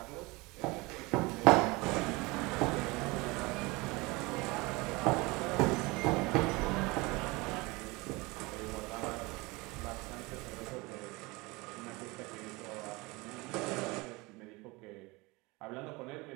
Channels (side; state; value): left; quieter; 24.1 dB